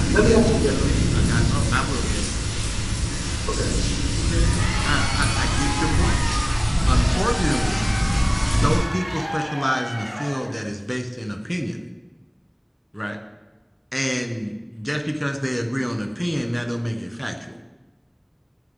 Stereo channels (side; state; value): both; identical; correlation 1.00